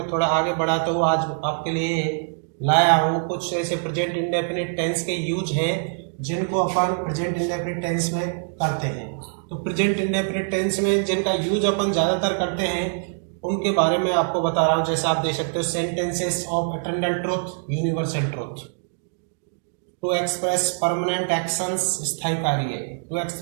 थोड़ा आगे बढ़ाता हूँ। आज आपके लिए लाया हूँ कुछ ऐसे प्रेजेंट इंडेफिनिट टेंस के यूज हैं जिनको अपन प्रेजेंट इंडेफिनिट टेंस में करते हैं। तो प्रेजेंट इंडेफिनिट टेंस में जिनका यूज अपन ज़्यादातर करते हैं उनके बारे में आपको बता रहा हूँ। जैसा आप देख सकते हो, sentences of eternal truth, universal truth. To express permanent actions, स्थायी कार्य। To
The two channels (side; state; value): left; silent; digital silence